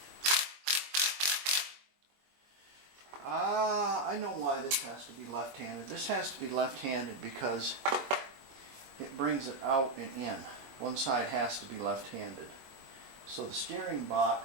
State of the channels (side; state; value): left; late; 22 ms